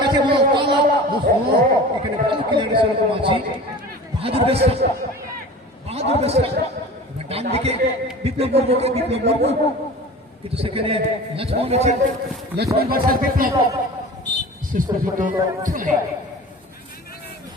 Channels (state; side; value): normal; both; correlation 0.38